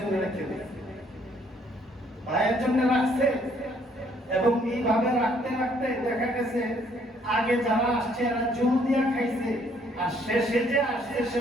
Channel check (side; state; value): both; normal; correlation 0.65